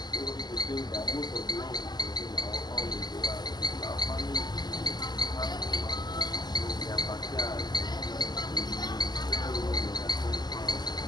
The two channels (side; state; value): right; late; 0.20 ms